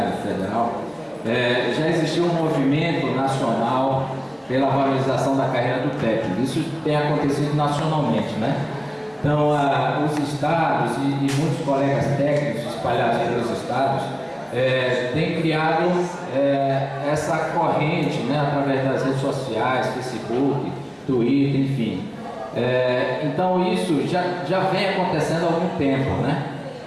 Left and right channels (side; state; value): both; identical; correlation 1.00